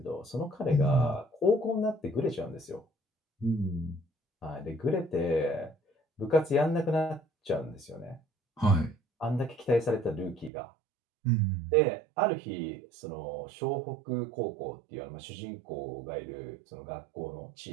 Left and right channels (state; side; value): drops out; left; at 10.5 s